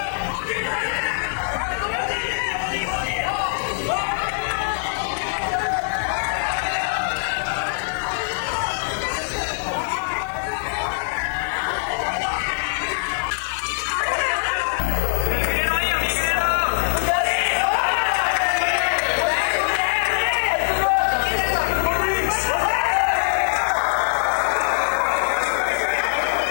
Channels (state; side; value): silent; right; digital silence